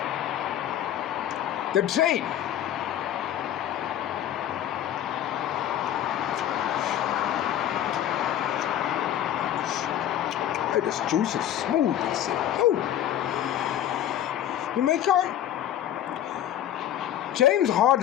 the trade, hey, this juice is smooth. I said, oh. You make out? James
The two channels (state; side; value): quieter; right; 11.3 dB